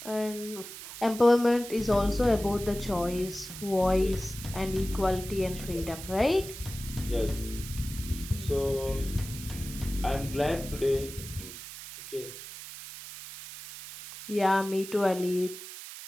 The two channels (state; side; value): noise; right; hiss, 12 dB below the sound